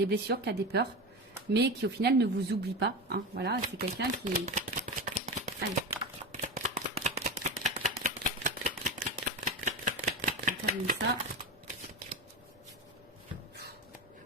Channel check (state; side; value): normal; both; correlation 0.22